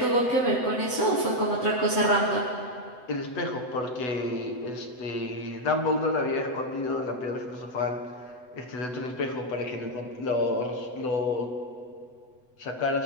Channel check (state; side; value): late; right; 8.0 ms